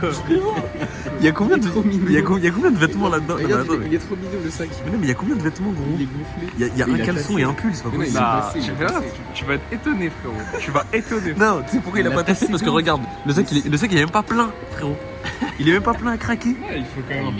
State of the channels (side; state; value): both; identical; correlation 1.00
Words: Il y a combien de vêtements là-dedans? Regarde, il est trop mignon le sac. Mais non, mais il y a combien de vêtements, gros? Il est gonflé. Il y a un caleçon et un pull, c'est pas possible. Nah, tu verras, tu vas être étonné, frérot. Tu vas étonner. Non, tu sais pourquoi il a pas tassé? Parce que regarde, le sac il est même pas plein, frérot. Il est même pas plein à craquer. Ouais, il faut quand même.